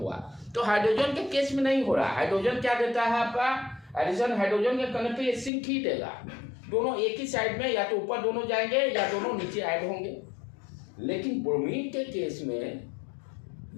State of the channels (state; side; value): drops out; right; at 5.5 s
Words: तो हाइड्रोजन के केस में नहीं हो रहा। हाइड्रोजन क्या देता है आपका एडिशन, हाइड्रोजन के करने पे ये सिंक ही देगा। दोनों एक ही साइड में, या तो ऊपर दोनों जाएंगे या दोनों नीचे ऐड होंगे। लेकिन ब्रोमीन के केस में